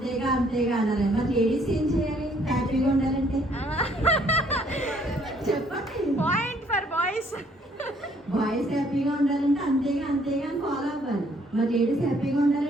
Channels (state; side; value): normal; both; correlation 0.64